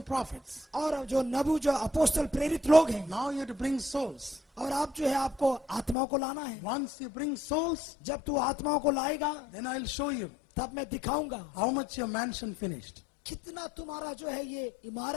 prophets. और जो नबू जो अपोस्तल प्रेरित लोग हैं, Now you have to bring souls. और आप जो है आपको आत्माओं को लाना है। Once you bring souls, जब तू आत्माओं को लाएगा then I'll show you तब मैं दिखाऊंगा how much your mansion finished. कितना तुम्हारा जो है ये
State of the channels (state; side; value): drops out; right; at 6.0 s